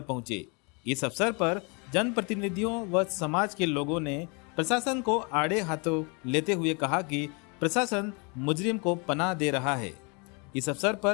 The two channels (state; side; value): quieter; right; 32.1 dB